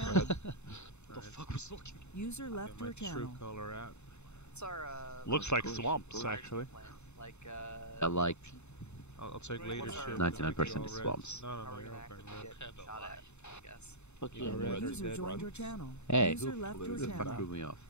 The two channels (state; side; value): late; right; 0.82 ms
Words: What the fuck was looking? User left your channel. color out. What's our, Looks like swamps, actually. like, I like I'll take leadership. 99% is swamps. No, how we're you're gonna okay. actually get shot at, I guess. User joined your channel. Hey, User left who your the fuck channel. threw me off?